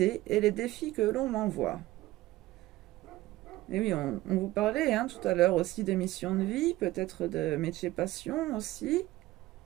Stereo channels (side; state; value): left; quieter; 17.3 dB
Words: et les défis que l'on m'envoie. Et oui, on vous parlait hein, tout à l'heure aussi de mission de vie, peut-être de métier passion aussi.